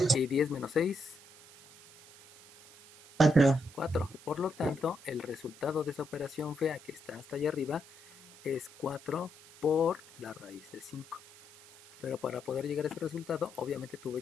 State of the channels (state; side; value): noise; right; hiss, 21 dB below the sound